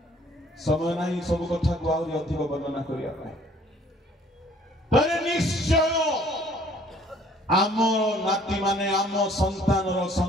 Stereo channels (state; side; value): normal; both; correlation 0.57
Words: समय नहीं सब कथा को आउरी अधिक वर्णना करिया पाए तरे निश्चय आम नाती माने आम